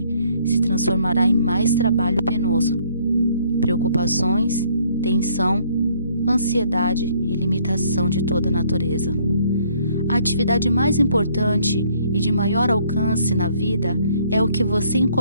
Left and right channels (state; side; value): inverted; both; correlation -0.64